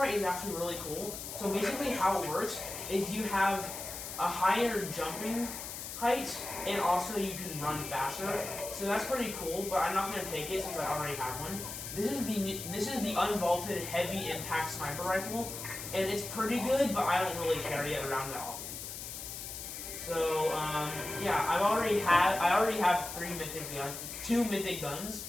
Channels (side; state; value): left; noise; hiss, 8 dB below the sound